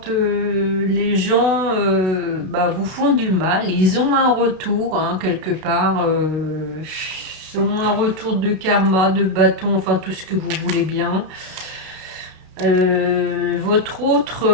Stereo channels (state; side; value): late; left; 32 ms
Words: les gens vous font du mal, ils ont un retour, hein, quelque part, ils ont un retour de karma, de bâton, enfin tout ce que vous voulez bien. Votre